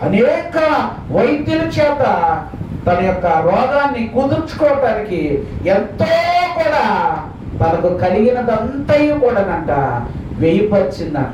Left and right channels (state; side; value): identical; both; correlation 1.00